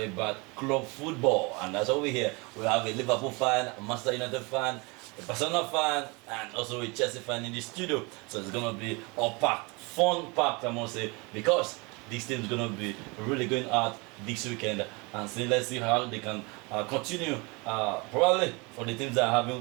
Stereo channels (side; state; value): left; quieter; 28.0 dB